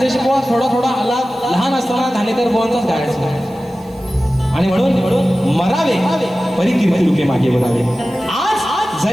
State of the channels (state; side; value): noise; right; hiss, 28 dB below the sound